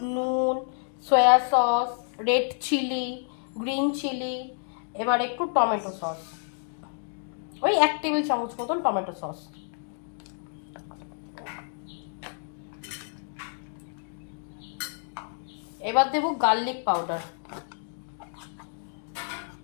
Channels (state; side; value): silent; right; 59 dB below the other